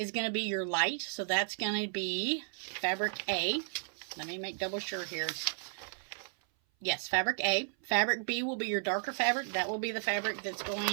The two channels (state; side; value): silent; left; 55 dB below the other